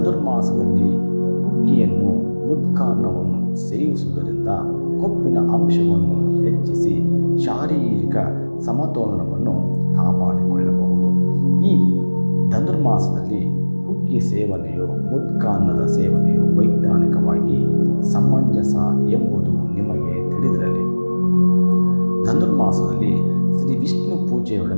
ಹುಗ್ಗಿಯನ್ನು ಮುದ್ಕಾನ್ನವನ್ನು ಸೇವಿಸುವುದರಿಂದ ಕೊಬ್ಬಿನ ಅಂಶವನ್ನು ಹೆಚ್ಚಿಸಿ ಶಾರೀರಿಕ ಸಮತೋಲನವನ್ನು ಕಾಪಾಡಿಕೊಳ್ಳಬಹುದು. ಈ ಧನುರ್ಮಾಸದಲ್ಲಿ ಹುಗ್ಗಿ ಸೇವನೆಯು ಮುದ್ಕಾನ್ನದ ಸೇವನೆಯು ವೈಜ್ಞಾನಿಕವಾಗಿ ಸಮಂಜಸ ಎಂಬುದು ನಿಮಗೆ ತಿಳಿದಿರಲಿ. ಧನುರ್ಮಾಸದಲ್ಲಿ ಶ್ರೀ ವಿಷ್ಣು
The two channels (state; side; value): inverted; both; correlation -1.00